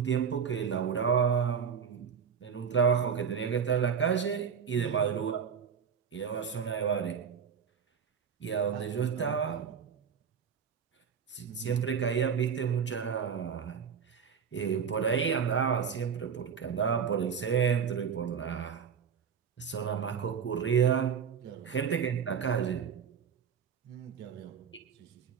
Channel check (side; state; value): left; quieter; 7.0 dB